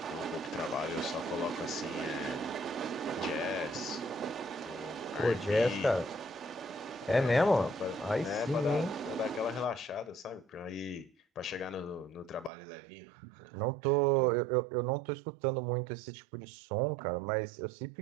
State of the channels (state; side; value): drops out; left; at 12.5 s